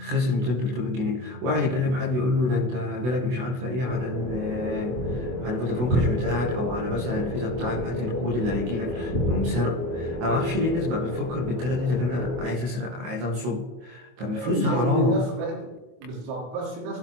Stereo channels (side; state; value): left; late; 24 ms